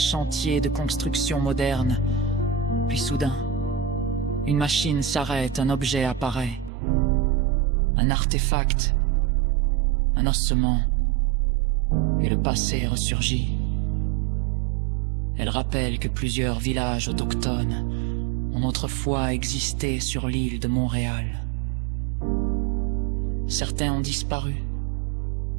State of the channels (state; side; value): drops out; left; at 6.7 s